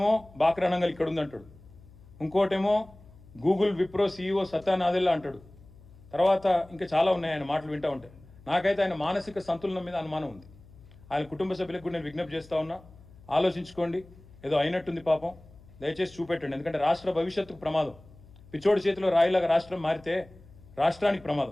బాక్రానంగల్ ఇక్కడ ఉందంటాడు, ఇంకోటేమో గూగుల్ విప్రో CEO సత్యానాదెల్లా అంటాడు, తర్వాత ఇంకా చాలా ఉన్నాయి ఆయన మాటలు వింటూ ఉంటే. నాకైతే ఆయన మానసిక సంతులనం మీద అనుమానం ఉంది. ఆయన కుటుంబ సభ్యులకు కూడా నేను విజ్ఞప్తి చేస్తూ ఉన్నా, ఆలోచించుకోండి. ఏదో అయినట్టుంది పాపం, దయచేసి చూపెట్టండి. ఎందుకంటే రాష్ట్ర భవిష్యత్తుకు ప్రమాదం. పిచ్చోడి చేతిలో రాయిలాగా రాష్ట్రం మారితే రాష్ట్రానికి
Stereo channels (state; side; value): noise; left; hum, 23 dB below the sound